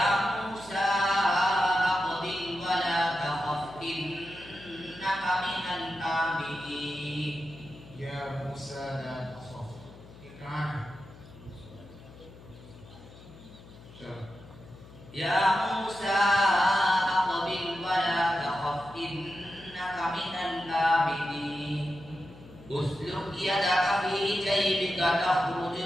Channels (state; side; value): noise; left; hum, 19 dB below the sound